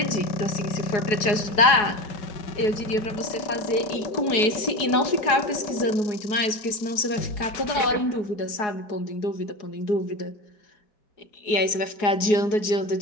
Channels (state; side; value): late; right; 4.8 ms